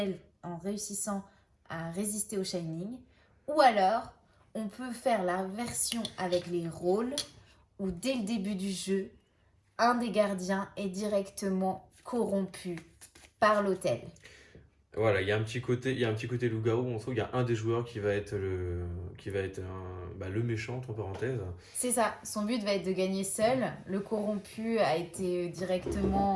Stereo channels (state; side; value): identical; both; correlation 1.00